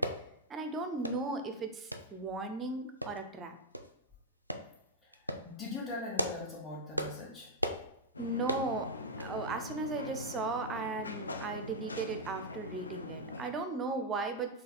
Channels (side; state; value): both; normal; correlation -0.03